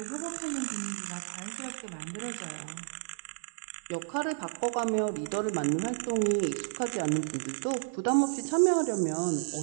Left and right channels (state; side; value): silent; left; digital silence